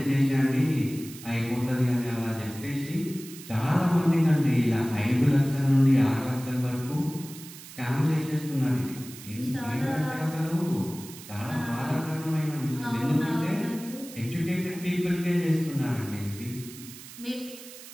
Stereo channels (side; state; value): right; noise; hiss, 16 dB below the sound